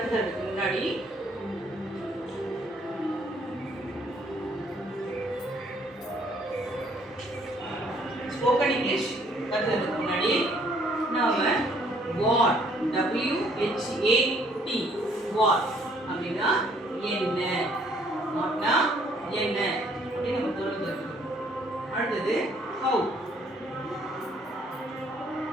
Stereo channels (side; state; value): both; normal; correlation 0.63